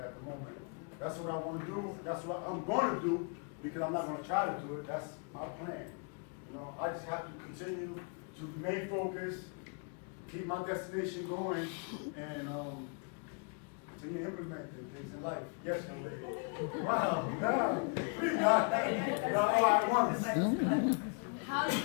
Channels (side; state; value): right; quieter; 39.0 dB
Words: the moment. That's what I want to do. That's what I'm going to do because I'm not going to try to do it. That's my plan. You know, I just have to continue to remain focused, keep my destination going, and continue implementing things in life. Yes, young lady. Wow. Yeah. Pretty nice. All at once. How do